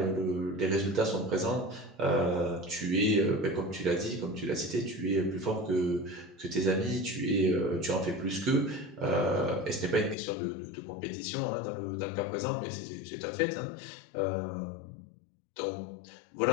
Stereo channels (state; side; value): drops out; right; at 10.2 s